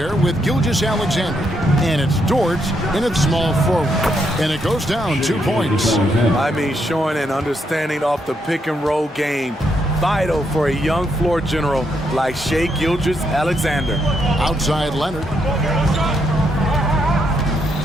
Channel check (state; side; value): normal; both; correlation 0.77